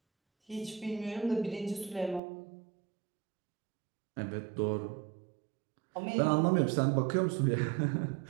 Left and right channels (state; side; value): drops out; left; at 2.2 s